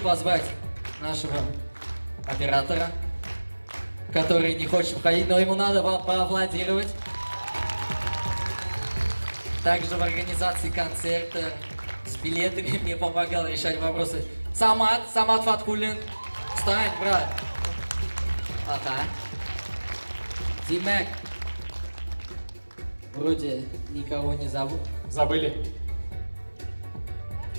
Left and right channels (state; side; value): inverted; both; correlation -1.00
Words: нашего оператора, который не хочет входить, но ему надо поаплодировать. Также в организации концерта с билетами мне помогал решать вопросы Самат Фаткуллин. Встань, брат. Ага. Димек. Вроде никого не зовут. Забыли.